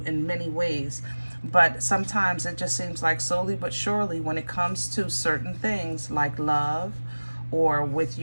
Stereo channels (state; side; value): inverted; both; correlation -1.00